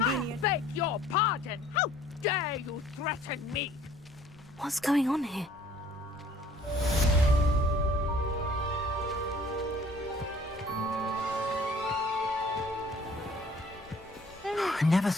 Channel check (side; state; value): both; normal; correlation 0.55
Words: I beg your pardon! How dare you threaten me? What's going on here? I never